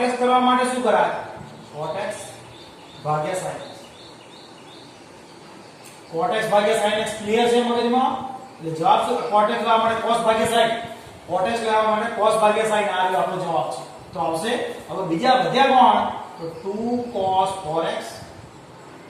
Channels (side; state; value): both; identical; correlation 1.00